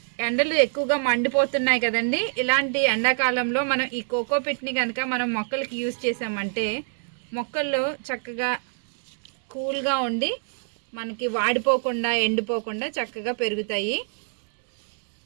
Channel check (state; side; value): silent; left; digital silence